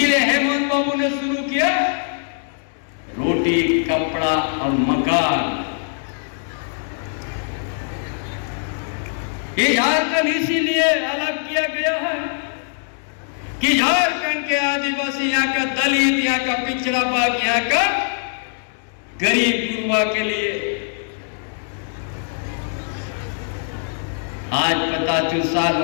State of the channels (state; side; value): silent; right; 64 dB below the other